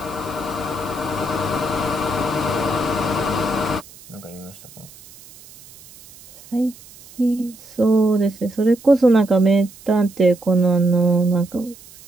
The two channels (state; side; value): noise; right; hiss, 22 dB below the sound